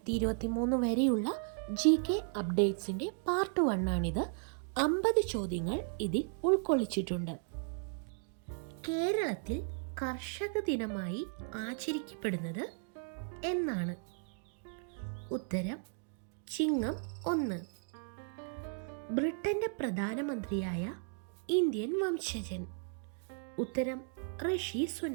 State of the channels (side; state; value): left; silent; 54 dB below the other